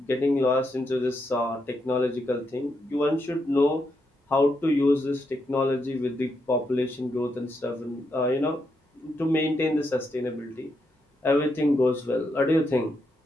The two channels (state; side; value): normal; both; correlation 0.81